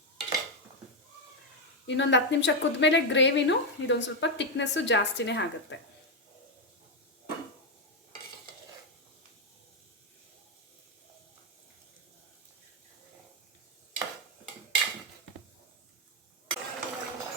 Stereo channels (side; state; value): both; normal; correlation 0.05